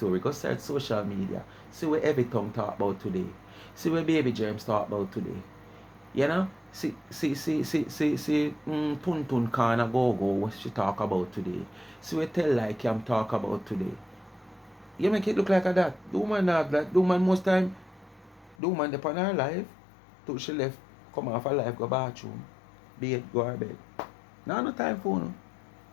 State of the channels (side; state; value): right; drops out; at 18.6 s